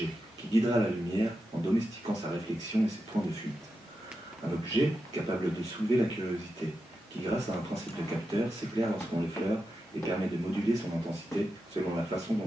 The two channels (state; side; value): normal; both; correlation 0.89